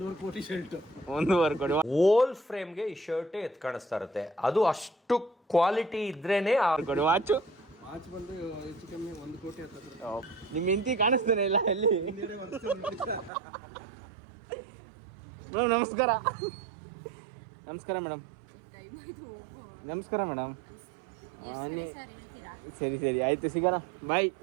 ಕೋಟಿ ಶರ್ಟ್. 1.5 ಕೋಟಿ. ಓಲ್ ಫ್ರೇಮ್ಗೆ ಈ ಶರ್ಟ್ ಎತ್ ಕಾಣಿಸ್ತಾ ಇರುತ್ತೆ. ಅದು ಅಷ್ಟು ಕ್ವಾಲಿಟಿ ಇದ್ರೇನೆ ಕೊಡಿ. ವಾಚು ವಾಚ್ ಬಂದು ಹೆಚ್ಚು ಕಮ್ಮಿ 1 ಕೋಟಿ ಹತ್ತಿರ. ನಿಮ್ಮ ಹೆಂಡತಿ ಕಾಣಿಸ್ತಾನೆ ಇಲ್ಲ ಎಲ್ಲಿ? ನಮಸ್ಕಾರ. ನಮಸ್ಕಾರ ಮೇಡಮ್. ನಮಸ್ಕಾರ ಮೇಡಮ್. ಸರಿ ಸರಿ ಆಯ್ತು, ಸಿಗೋಣ. ಬಾಯ್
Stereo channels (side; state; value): left; drops out; at 13.3 s